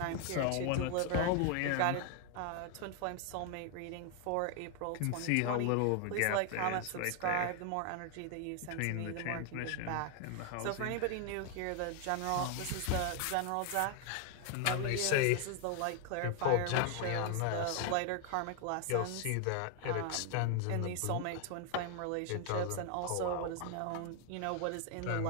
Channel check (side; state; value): both; different; correlation 0.00